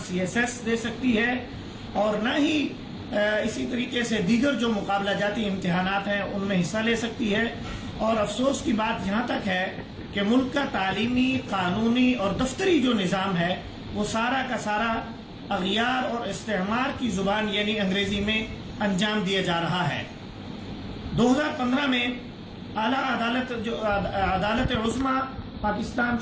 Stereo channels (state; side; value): identical; both; correlation 1.00